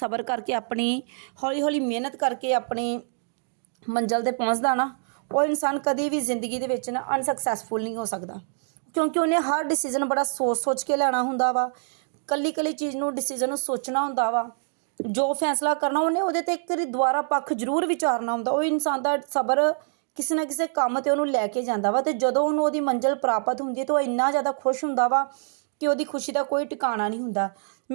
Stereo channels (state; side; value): silent; left; digital silence